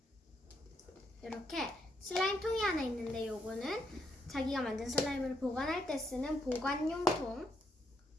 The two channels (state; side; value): normal; both; correlation 0.76